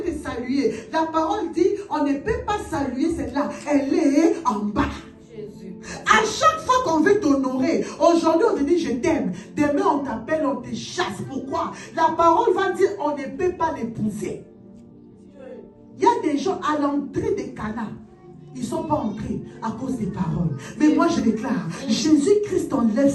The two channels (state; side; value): identical; both; correlation 1.00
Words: te saluer, la parole dit, on ne peut pas saluer celle-là. Elle est en bas. Jésus. À chaque fois qu'on veut t'honorer, aujourd'hui on te dit je t'aime, demain on t'appelle, on te chasse. Pourquoi? La parole va dire on ne peut pas l'épouser. Il y a des gens à l'entrée des Cana, ils ne sont pas entrés à cause des paroles. Mais moi je déclare, Jésus-Christ enlève